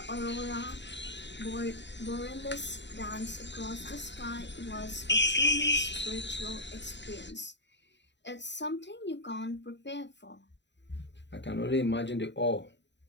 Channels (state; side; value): late; right; 0.52 ms